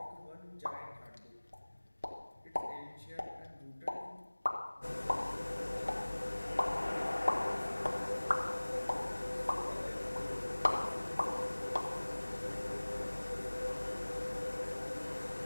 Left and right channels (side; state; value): both; inverted; correlation -1.00